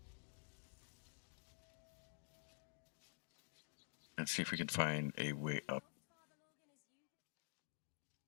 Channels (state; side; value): silent; right; digital silence